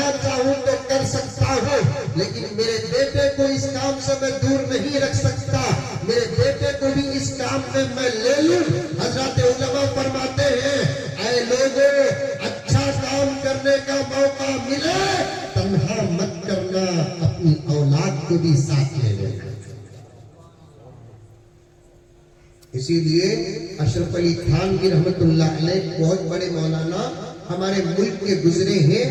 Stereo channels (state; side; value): identical; both; correlation 1.00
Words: चाहूं तो कर सकता हूं, लेकिन मेरे बेटे को इस काम से मैं दूर नहीं रख सकता। मेरे बेटे को भी इस काम में मैं ले लूं। हजरत उलमा फरमाते हैं, ऐ लोगों, अच्छा काम करने का मौका मिले तन्हा मत करना, अपनी औलाद को भी साथ ले लेना। इसीलिए अशरफ अली थानवी रहमतुल्लाह अलैह बहुत बड़े मौलाना हमारे मुल्क के गुजरे हैं,